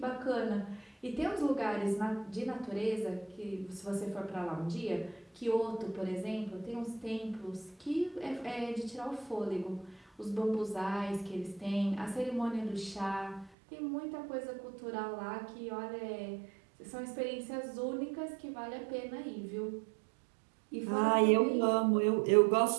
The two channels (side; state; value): left; drops out; at 13.5 s